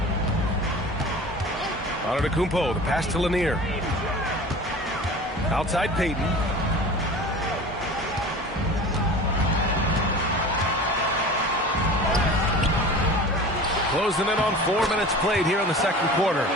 Antetokounmpo, the pass to Lanier. Outside Payton. Closing in on 4 minutes played here in the second quarter.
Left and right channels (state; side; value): normal; both; correlation 0.38